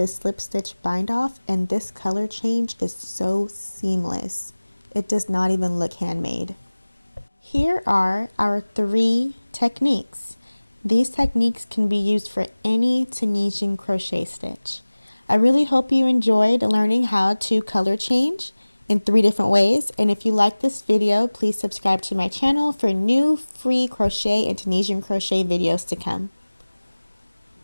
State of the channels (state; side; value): inverted; both; correlation -1.00